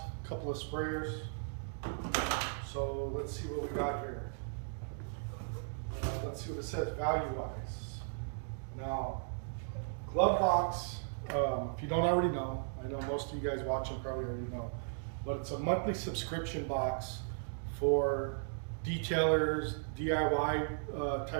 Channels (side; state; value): left; silent; digital silence